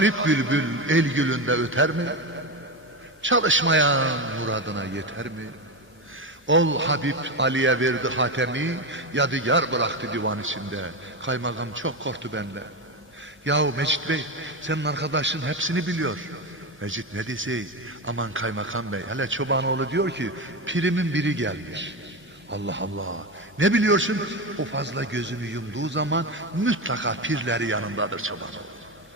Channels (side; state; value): both; normal; correlation 0.16